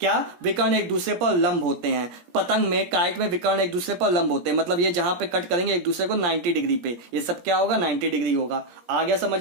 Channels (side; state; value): left; late; 17 ms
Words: विकर्ण एक दूसरे पर लंब होते हैं। पतंग में, काइट में विकर्ण एक दूसरे पर लंब होते हैं, मतलब ये जहां पे कट करेंगे एक दूसरे को 90 डिग्री पे, ये सब क्या होगा, 90 डिग्री होगा। आ गया